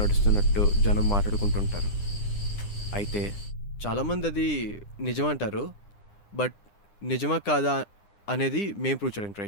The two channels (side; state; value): right; late; 9.9 ms